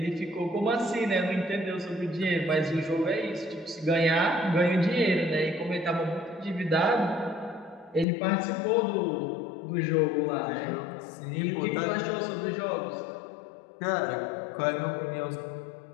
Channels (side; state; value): right; drops out; at 8.1 s